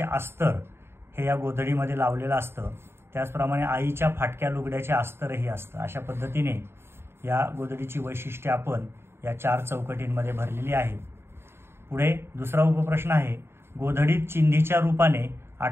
अस्तर हे या गोधडीमध्ये लावलेलं असतं। त्याचप्रमाणे आईच्या फाटक्या लुगड्याचे अस्तरही असतं। अशा पद्धतीने या गोधडीची वैशिष्ट्ये आपण या 4 चौकटींमध्ये भरलेली आहे। पुढे दुसरा उपप्रश्न आहे गोधडीत चिंधीच्या रूपाने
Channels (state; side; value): late; left; 0.12 ms